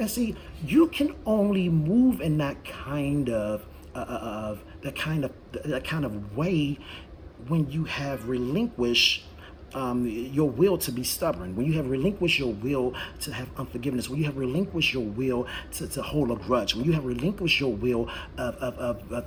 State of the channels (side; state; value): both; identical; correlation 1.00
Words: see, you can only move in that kind of way when you have relinquished your will to be stubborn, when you have relinquished your will to have unforgiveness, when you have relinquished your will to hold a grudge, when you have relinquished your will